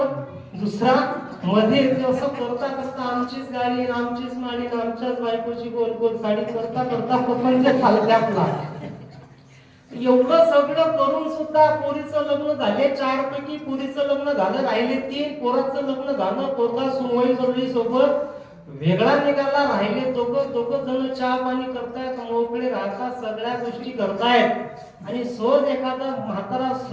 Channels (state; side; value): identical; both; correlation 1.00